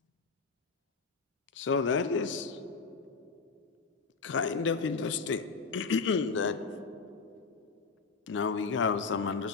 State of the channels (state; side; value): quieter; right; 4.7 dB